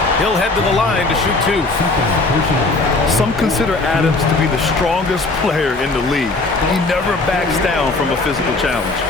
He'll head to the line to shoot 2. Some consider Adams to be the strongest player in the league. He never backs down from a physical challenge.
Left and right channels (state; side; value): quieter; right; 3.3 dB